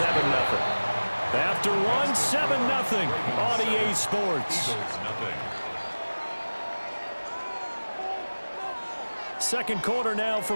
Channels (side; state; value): both; inverted; correlation -1.00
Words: After one, 7-0 on EA Sports. Second quarter now